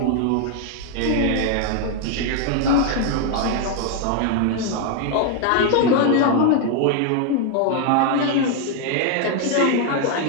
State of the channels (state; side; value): different; both; correlation 0.00